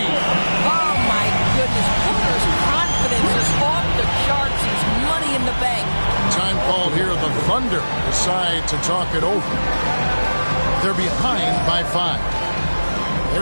Oh, my goodness. Booker's confidence is off the charts. He's money in the bank. Time called here. The Thunder decide to talk it over. They're behind by 5.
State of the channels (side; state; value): both; inverted; correlation -1.00